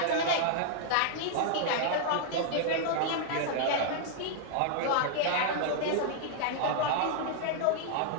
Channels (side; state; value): both; different; correlation -0.01